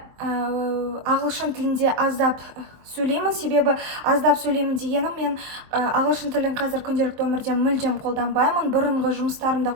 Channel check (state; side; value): late; left; 23 ms